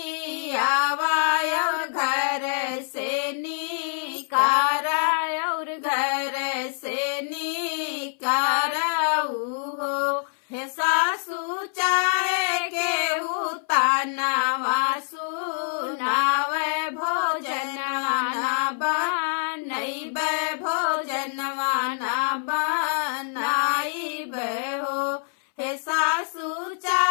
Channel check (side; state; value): right; silent; 62 dB below the other